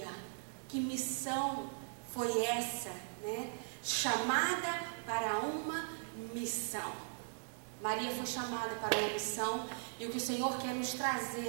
Que missão foi essa, né? Chamada para uma missão. Maria foi chamada para uma missão, e o que o Senhor quer nos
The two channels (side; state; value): left; silent; digital silence